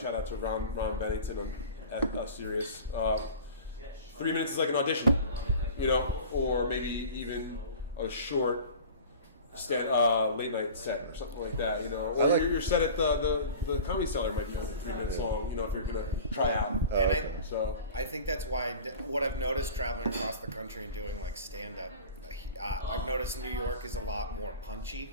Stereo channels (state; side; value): inverted; both; correlation -0.39